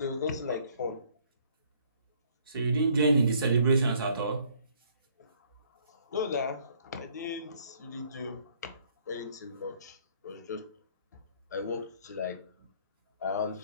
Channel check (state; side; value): inverted; both; correlation -0.62